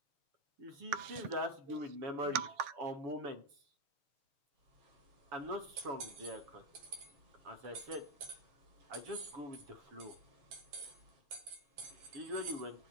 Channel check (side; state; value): left; late; 7.4 ms